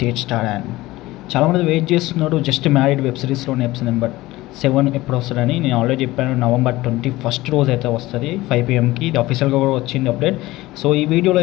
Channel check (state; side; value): quieter; right; 18.4 dB